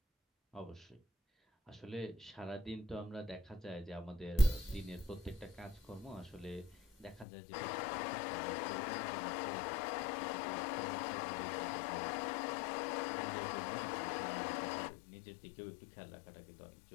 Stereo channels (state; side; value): drops out; right; at 7.2 s